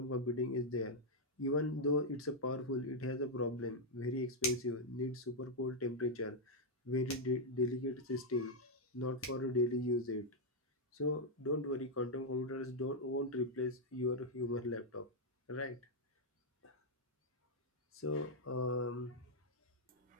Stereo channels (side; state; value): both; normal; correlation -0.03